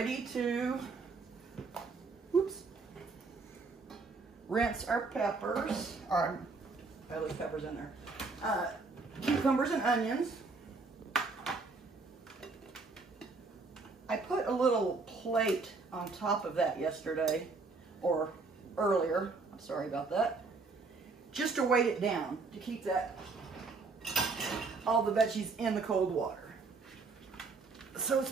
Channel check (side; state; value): left; quieter; 4.1 dB